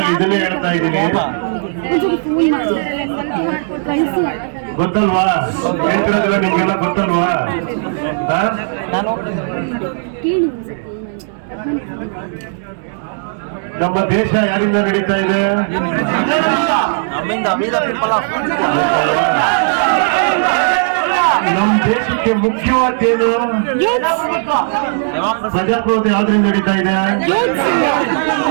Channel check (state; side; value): silent; left; digital silence